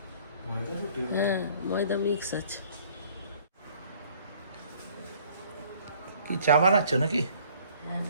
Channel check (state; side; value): inverted; both; correlation -0.57